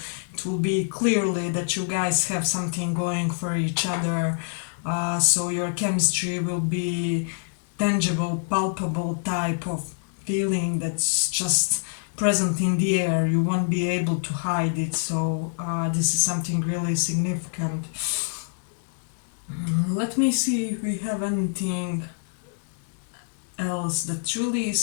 it will be clearly that you guys have something going for each other. So your chemistry will be tangible, palpable type of feeling that's just present in the air. You won't be able to hide it. So this is something really significant. Let me see if we have anything else that really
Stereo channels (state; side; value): silent; right; digital silence